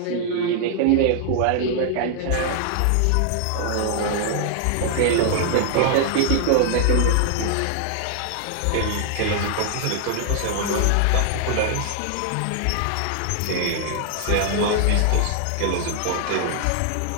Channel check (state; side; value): different; both; correlation 0.00